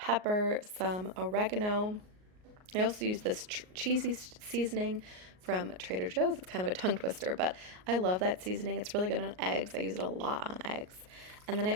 some oregano. I also use this cheesy seasoning from Trader Joe's. It's kind of a tongue twister, but I love that seasoning. It's really good on eggs. I use it a lot on eggs. And then I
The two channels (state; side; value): late; left; 38 ms